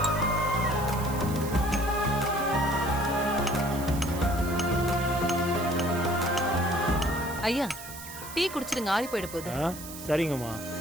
ஐயா டீ குடிச்சிடுங்க, ஆறி போயிட போகுது. சரிங்கம்மா.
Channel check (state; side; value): noise; right; hiss, 12 dB below the sound